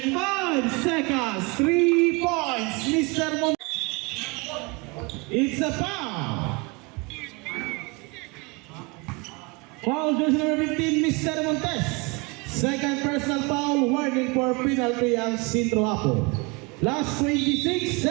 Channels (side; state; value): left; quieter; 28.3 dB